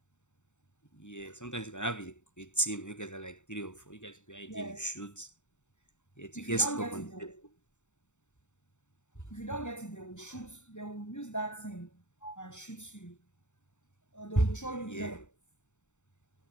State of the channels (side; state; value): right; late; 0.84 ms